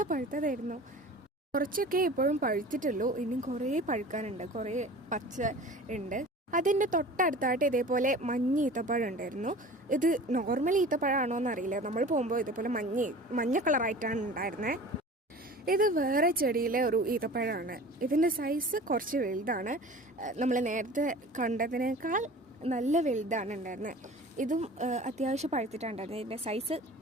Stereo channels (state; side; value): normal; both; correlation 0.40